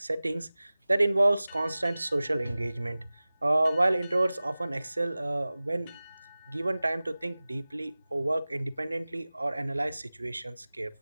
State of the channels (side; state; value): both; inverted; correlation -0.98